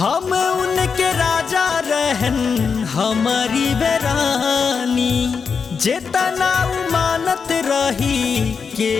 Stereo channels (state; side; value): quieter; right; 5.7 dB